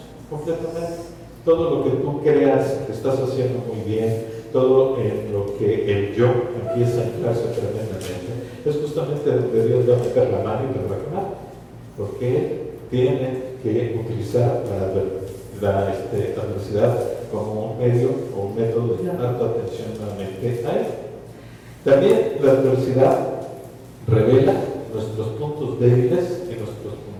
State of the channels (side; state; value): both; identical; correlation 1.00